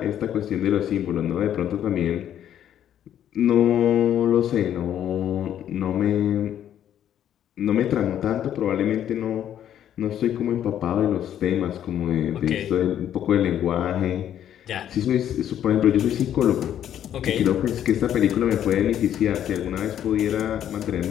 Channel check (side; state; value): right; quieter; 10.4 dB